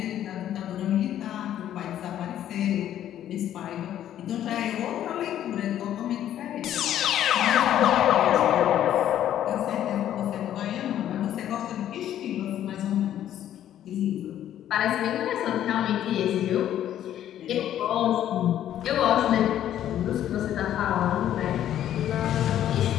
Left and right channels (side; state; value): right; quieter; 11.3 dB